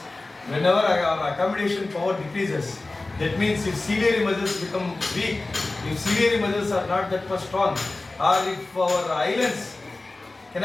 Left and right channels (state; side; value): quieter; right; 3.2 dB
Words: Whenever our accommodation power decreases, that means if ciliary muscles become weak, if ciliary muscles are not that much strong, or if our eyelids